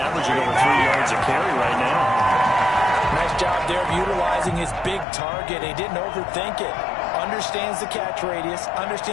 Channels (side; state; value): right; drops out; at 5.1 s